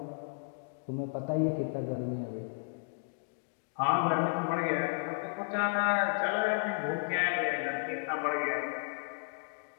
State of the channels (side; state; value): right; silent; digital silence